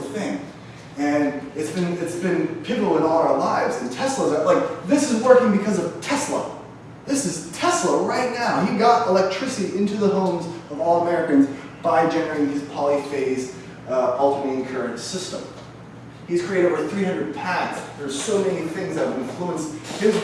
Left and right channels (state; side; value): identical; both; correlation 1.00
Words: thing. And it's been pivotal in all our lives. And Tesla's like, this is working because of Tesla. This is Tesla right now. He got electricity into the homes of all Americans by generating his polyphase alternating current system. He's created over 300 patents. There's so many things that have influenced his